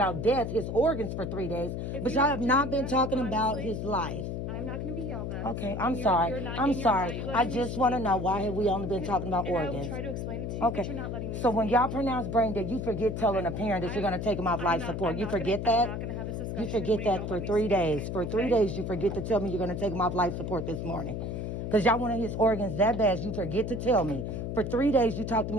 death, his organs for 3 days, but y'all have not been talking about his life. I'm not going to be yelled at. Okay, I'm sorry. I'm sorry. I just want to know, why have we only been talking about organs? I will try to explain it to you, okay. But you're not letting me So when y'all pronounce brain dead, you forget telling a parent that you're going to take them off life support. You forget that? I'm not going to have this discussion. You forget that for 3 days. For 3 days, you forget to tell me you're going to take them off life support this morning. Because y'all wanted his organs that bad, you forget to tell me. For 3 days, you talk to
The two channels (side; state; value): left; noise; hum, 4 dB below the sound